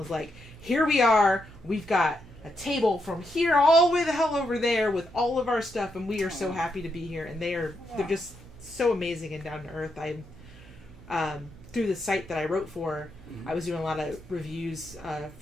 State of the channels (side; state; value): right; noise; hum, 21 dB below the sound